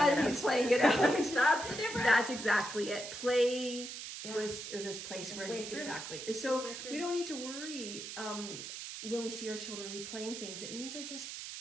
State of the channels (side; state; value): right; noise; hiss, 8 dB below the sound